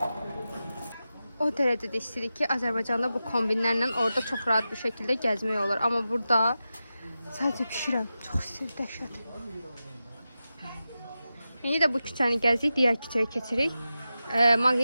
O dərəcədə istəyirik ki, Azərbaycanda bu kombinlərlə orada çox rahat bir şəkildə gəzmək olur. Amma burada sadəcə pişirəm. Çox istəyir, dəhşət. İndi də bu küçəni gəzirik, digər küçəyə keçirik.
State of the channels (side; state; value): both; inverted; correlation -0.92